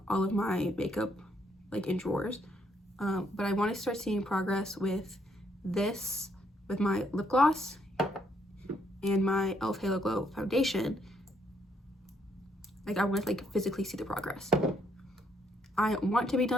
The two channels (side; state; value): both; normal; correlation 0.72